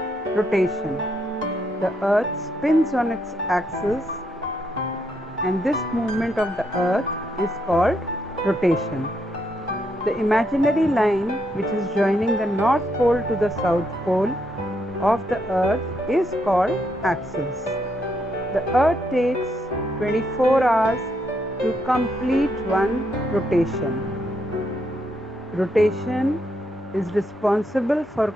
rotation. The Earth spins on its axis, and this movement of the Earth is called rotation. The imaginary line which is joining the North Pole to the South Pole of the Earth is called axis. The Earth takes 24 hours to complete one rotation. Rotation is responsible for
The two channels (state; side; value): normal; both; correlation 0.77